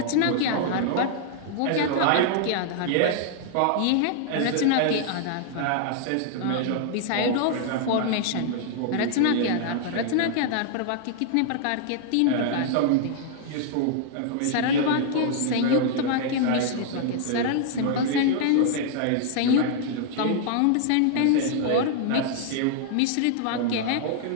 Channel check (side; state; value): both; different; correlation -0.01